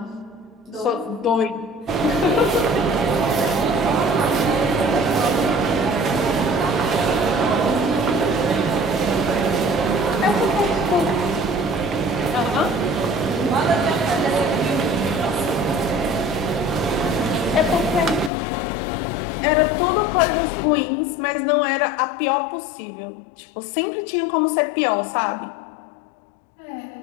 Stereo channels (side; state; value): right; drops out; at 18.3 s